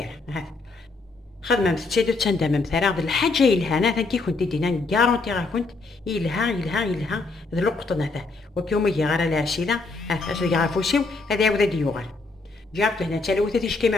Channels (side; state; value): right; quieter; 3.7 dB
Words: خدمة متسيدو تندم مثلا هذا الحاجة إلها أنا كي كنت دينا كارونتي راه كنت إلها ذا لقطة هذا وكيوم يجي غير الأسئلة اش اللي عارفوسيو هذا عاود ديوغال جابت هنا تلوثة تيش كيما